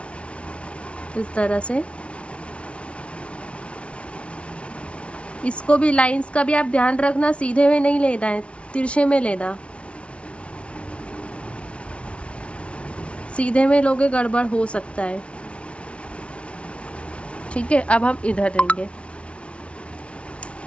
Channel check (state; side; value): late; right; 0.061 ms